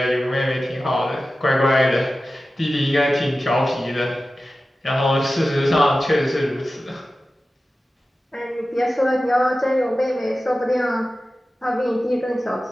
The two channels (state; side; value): normal; both; correlation 0.94